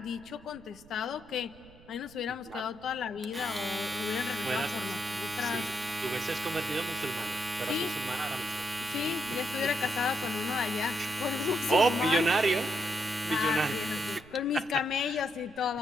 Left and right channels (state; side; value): noise; right; rumble, 24 dB below the sound